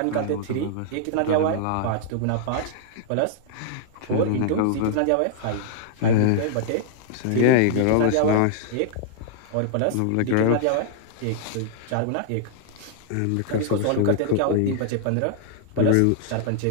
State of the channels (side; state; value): both; different; correlation -0.01